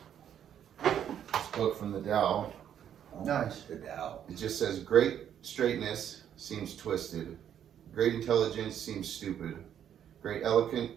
this book from the Tao. nice. The Tao. It just says, great straightness seems twisted. Great intelligence seems stupid. Great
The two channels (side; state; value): left; quieter; 9.6 dB